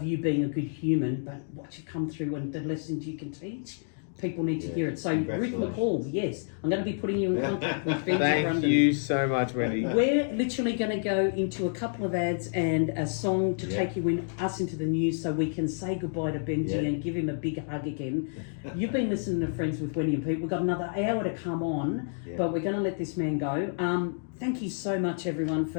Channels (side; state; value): right; silent; digital silence